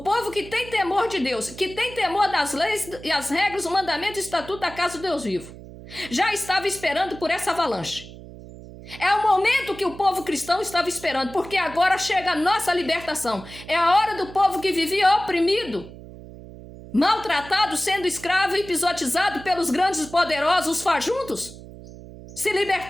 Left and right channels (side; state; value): right; noise; hum, 16 dB below the sound